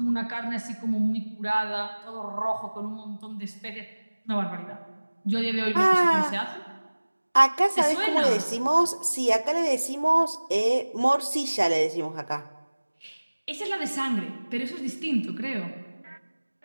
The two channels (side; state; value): both; inverted; correlation -1.00